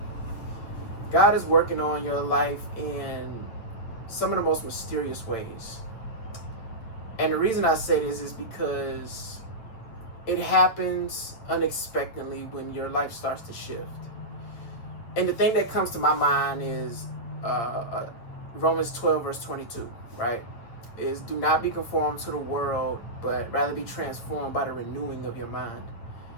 God is working on your life in some of the most mysterious ways. And the reason I say this is because it happens unexpectedly when your life starts to shift. And the thing that comes to my mind is Romans 12, verse 22, right? Is do not be conformed to the world, but rather be transformed by the renewing of your mind.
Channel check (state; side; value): late; right; 8.8 ms